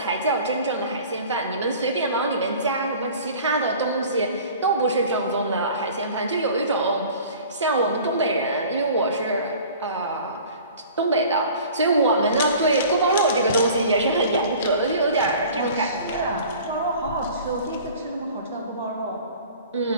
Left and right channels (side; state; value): both; inverted; correlation -0.45